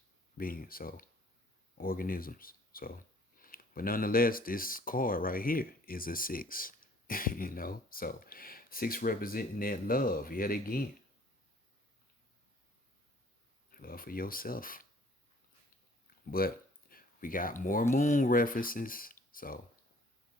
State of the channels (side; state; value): both; normal; correlation 0.56